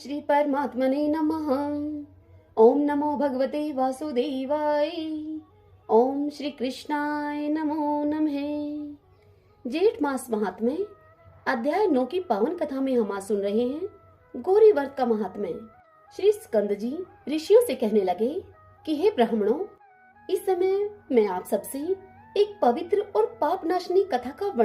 परमात्मने नमः। ओम नमो भगवते वासुदेवाय। ओम श्री कृष्णाय नमो नमः। जेठ मास महात्म्य अध्याय 9 की पावन कथा में हम आज सुन रहे हैं गौरी व्रत का महात्म्य। श्री स्कंद जी ऋषियों से कहने लगे कि हे ब्राह्मणों, इस समय मैं आप सबसे एक पवित्र और पाप नाशनी कथा का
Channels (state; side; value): identical; both; correlation 1.00